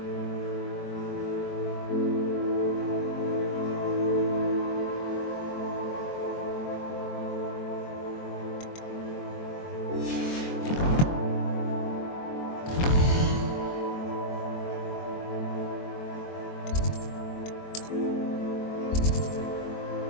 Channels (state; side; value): late; right; 23 ms